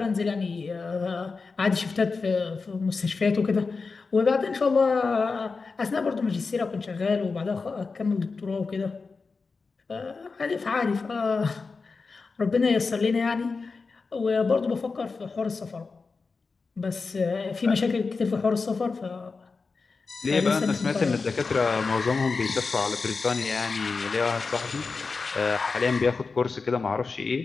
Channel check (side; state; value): right; quieter; 4.4 dB